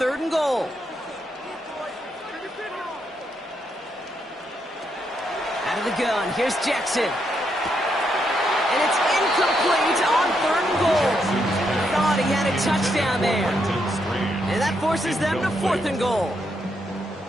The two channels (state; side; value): normal; both; correlation 0.79